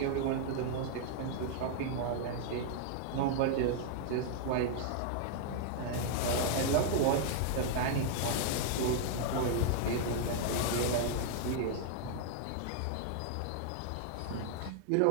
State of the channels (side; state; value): both; different; correlation -0.01